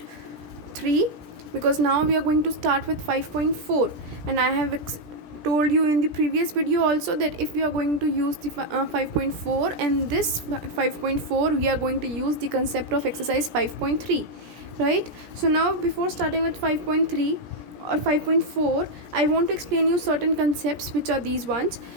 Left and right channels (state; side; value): late; left; 17 ms